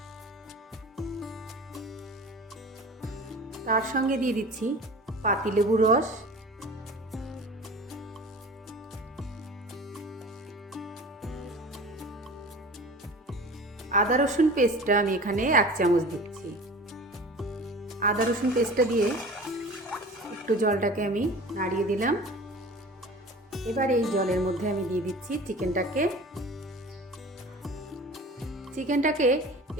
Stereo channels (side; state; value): both; normal; correlation 0.39